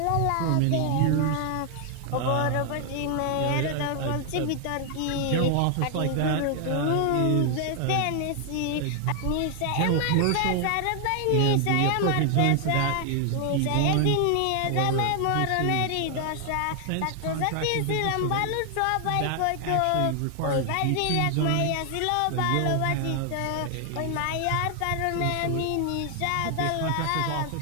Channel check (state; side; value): different; both; correlation 0.00